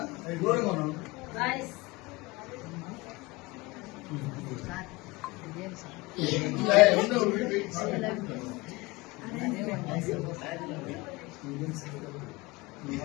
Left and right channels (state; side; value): quieter; right; 23.3 dB